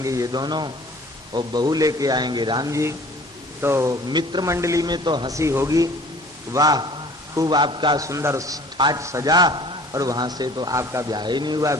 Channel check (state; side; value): normal; both; correlation 0.49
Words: ये दोनों और बहू लेके आएंगे राम जी, तो मित्र मंडली में तो हंसी होगी, वाह खूब आपका सुंदर ठाट सजा, और वहां से तो आपका ब्याह ही नहीं हुआ,